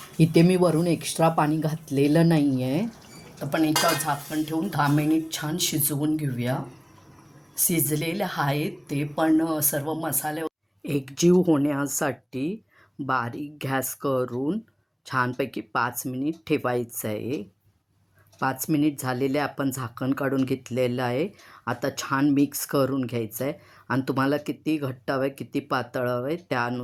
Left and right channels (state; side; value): identical; both; correlation 1.00